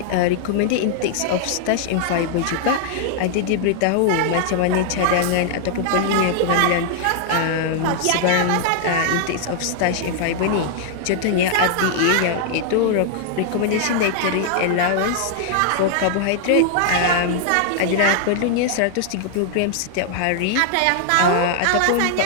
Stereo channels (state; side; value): different; both; correlation 0.00